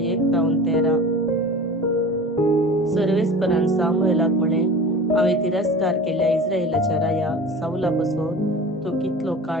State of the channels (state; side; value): normal; both; correlation 0.36